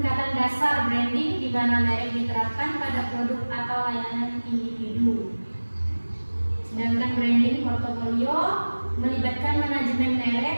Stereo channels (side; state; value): both; inverted; correlation -1.00